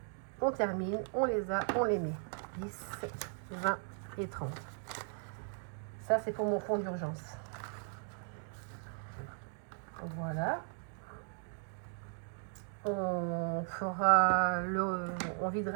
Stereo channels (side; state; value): left; silent; 53 dB below the other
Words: On termine, on les a, on les met. 10, 20 et 30. Ça, c'est pour mon fonds d'urgence. Voilà. On